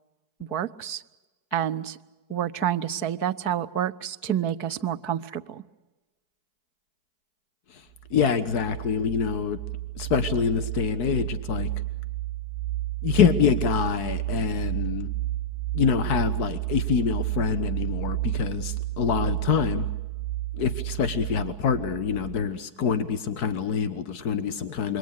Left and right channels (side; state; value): right; late; 4.6 ms